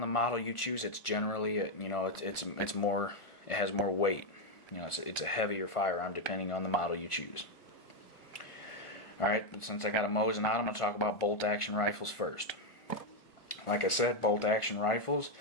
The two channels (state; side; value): late; right; 1.4 ms